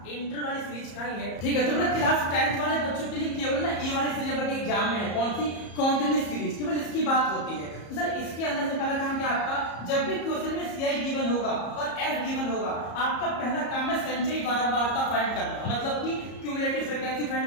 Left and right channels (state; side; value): late; right; 34 ms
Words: इंटर वाली सीरीज का ही है। ठीक है, तो मेरा क्लास 10th वाले बच्चों के लिए केवल ना ये वाली सीरीज आपके एग्जाम में है। कौन सी? कॉन्टिन्यूस सीरीज, केवल इसकी बात होती है। तो सर इसके अंदर से पहला काम क्या आपका? जब भी क्वेश्चन में CI गिवन होगा और F गिवन होगा, आपका पहला काम है संचयी बारंबारता फाइंड करना, मतलब कि क्यूमुलेटिव फ्रीक्वेंसी